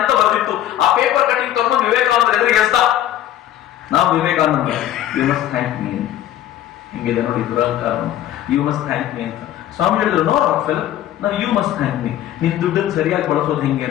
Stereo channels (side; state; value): right; quieter; 12.3 dB